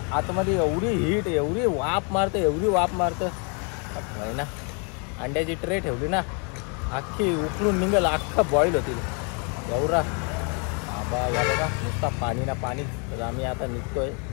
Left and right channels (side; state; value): right; quieter; 36.9 dB